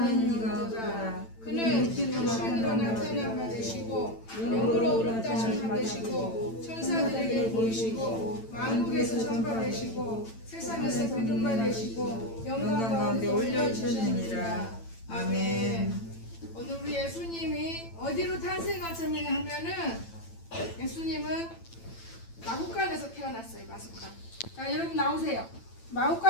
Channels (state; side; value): late; right; 8.9 ms